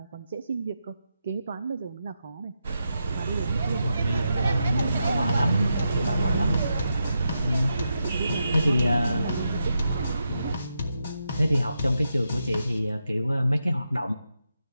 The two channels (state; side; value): inverted; both; correlation -0.85